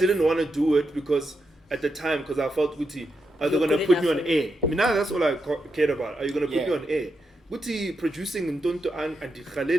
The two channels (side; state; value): both; normal; correlation 0.85